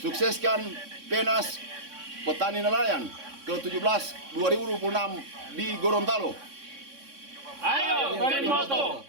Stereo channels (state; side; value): late; left; 3.6 ms